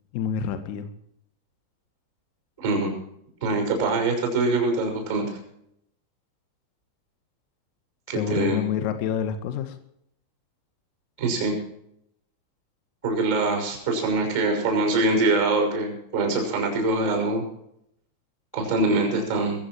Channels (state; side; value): late; right; 3.8 ms